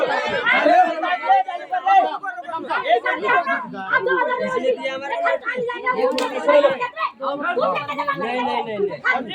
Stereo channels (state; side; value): identical; both; correlation 1.00